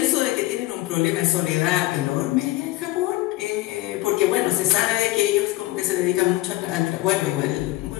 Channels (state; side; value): quieter; right; 18.1 dB